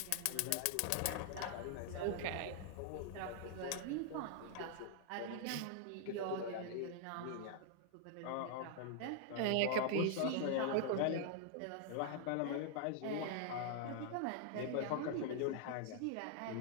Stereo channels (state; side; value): different; both; correlation 0.00